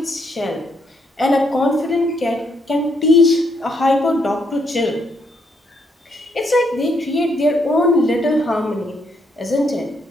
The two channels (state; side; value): normal; both; correlation 0.74